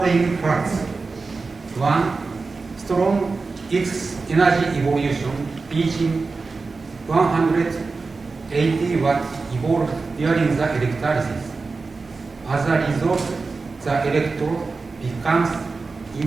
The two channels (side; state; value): left; quieter; 4.1 dB